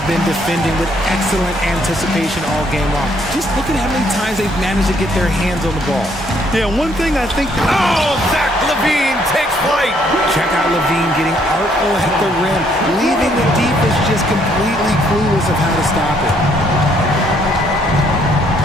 been defending with excellent anticipation all game long. Just look at how many times they've managed to get their hands on the ball. Yeah, one thing I think... Oh, Zach Levine takes flight. Check out Levine getting artful at the rim, leaving the defense just completely clueless of how to stop it.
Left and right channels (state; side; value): normal; both; correlation 0.68